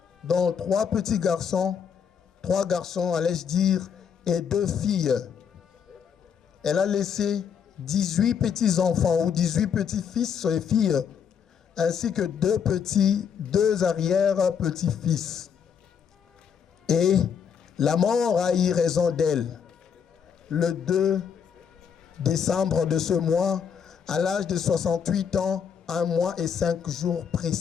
dont 3 petits garçons, 3 garçons, allais-je dire, et 2 filles. Elle a laissé 18 petits-enfants ou 18 petits-fils et filles, ainsi que 2 arrière-petits-fils. Et la mort a eu raison d'elle. Le 2 décembre de ce mois, à l'âge de 68 ans, 1 mois et 5 jours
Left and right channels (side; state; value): right; quieter; 7.4 dB